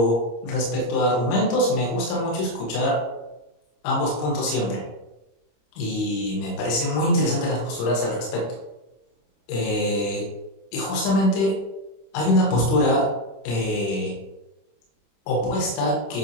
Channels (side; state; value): right; late; 26 ms